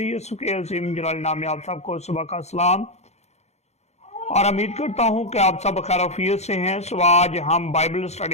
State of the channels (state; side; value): late; right; 0.32 ms